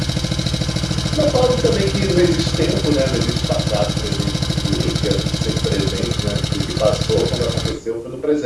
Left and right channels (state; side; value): identical; both; correlation 1.00